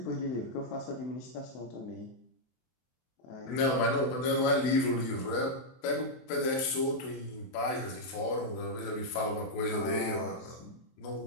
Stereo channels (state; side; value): late; right; 23 ms